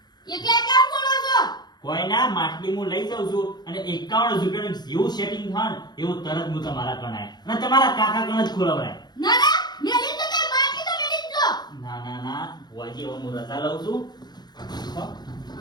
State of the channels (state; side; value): late; right; 0.20 ms